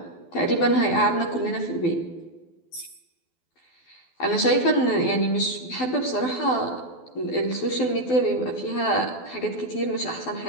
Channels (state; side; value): late; right; 12 ms